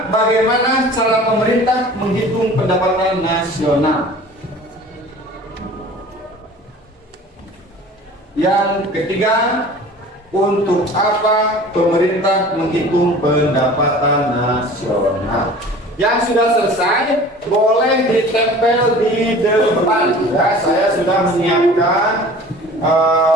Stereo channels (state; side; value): normal; both; correlation 0.43